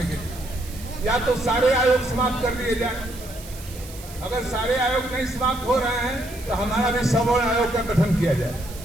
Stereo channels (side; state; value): right; noise; hiss, 17 dB below the sound